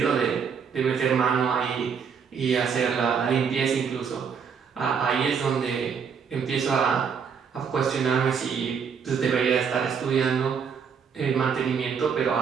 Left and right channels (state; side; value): quieter; left; 6.6 dB